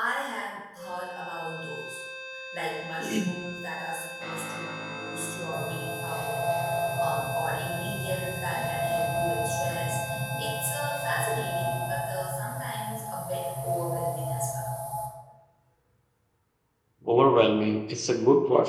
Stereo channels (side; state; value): both; identical; correlation 1.00